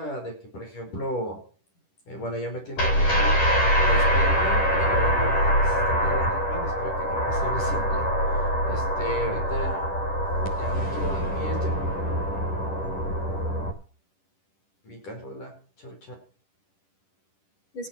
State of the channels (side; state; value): right; late; 10 ms